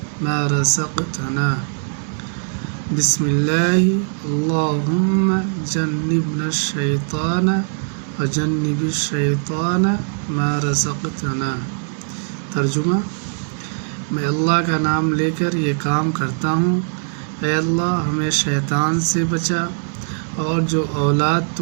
ما رزقتنا، بسم اللہ اللہم جنبنا الشیطان وجنب الشیطان ما رزقتنا۔ ترجمہ: میں اللہ کا نام لے کر یہ کام کرتا ہوں، اے اللہ ہمیں شیطان سے بچا، اور جو اولاد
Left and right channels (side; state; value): left; silent; 61 dB below the other